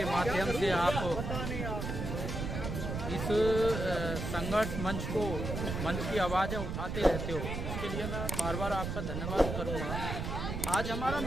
माध्यम से आप इस संघर्ष मंच की आवाज़ें उठाते रहते हो। इसके लिए मैं बार बार आपका धन्यवाद करूंगा। आज हमारा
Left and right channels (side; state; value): right; noise; rumble, 4 dB below the sound